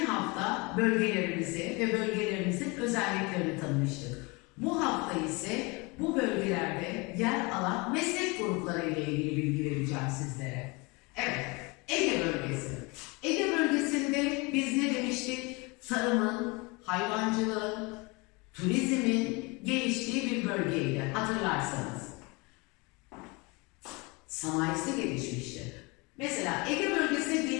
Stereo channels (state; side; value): quieter; right; 27.3 dB